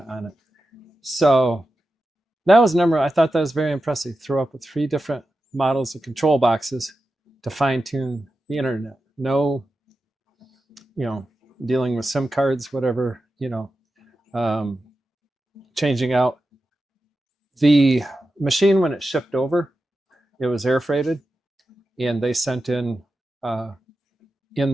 on it. So that was I thought that was very impressive. Throw up with 3 different models of control boxes to fine tune the internet. No, dealing with SIM cards, whatever, changing out. The machine, when it shipped over, it was air freighted, and they sent in their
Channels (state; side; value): normal; both; correlation 0.91